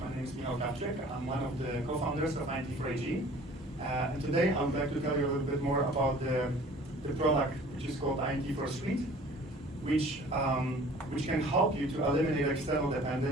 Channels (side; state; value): both; normal; correlation 0.49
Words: name is Michal Krawczyk. I'm one of the co-founders of IT4AG. And today I would like to tell you a little bit more about the product which is called IT4Suite, which can help you to eliminate external